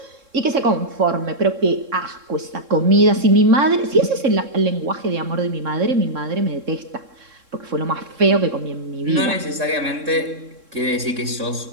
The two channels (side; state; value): left; late; 3.7 ms